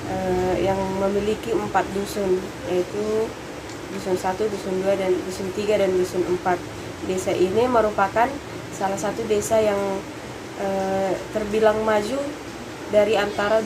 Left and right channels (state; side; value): identical; both; correlation 1.00